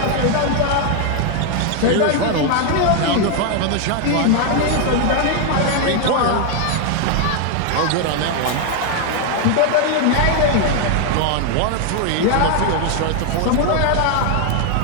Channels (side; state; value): both; different; correlation 0.01